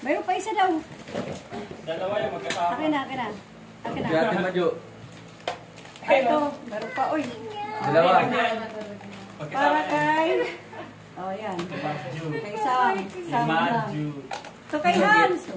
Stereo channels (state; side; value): identical; both; correlation 1.00